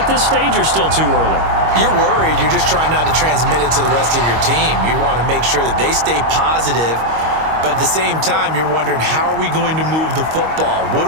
this stage or still too early? You're worried. You're just trying not to transmit it to the rest of your team. You want to make sure that they stay positive. But at the same time, you're wondering, how are we going to move the football? What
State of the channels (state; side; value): late; left; 25 ms